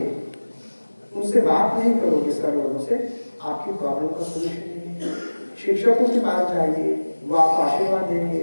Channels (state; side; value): inverted; both; correlation -1.00